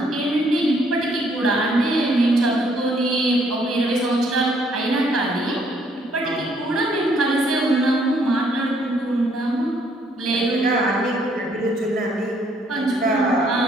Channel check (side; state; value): both; normal; correlation 0.67